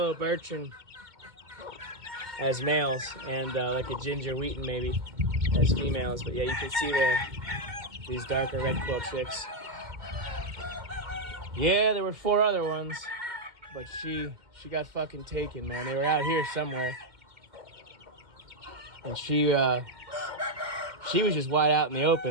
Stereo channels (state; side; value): late; left; 2.1 ms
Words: birchen as males, and like a ginger wheaton maybe as females. But yeah, you can see these darker red quill chicks. Yeah, there were 4 other ones, but she got fucking taken, man. They were out here somewhere, and she was just wide out in the